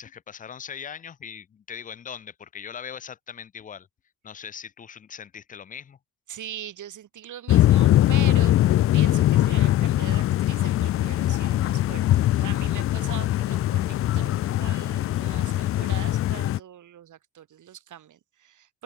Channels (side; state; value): right; quieter; 12.2 dB